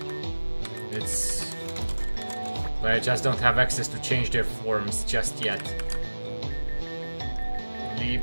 But I just don't have access to change their forms just yet.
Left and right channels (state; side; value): inverted; both; correlation -1.00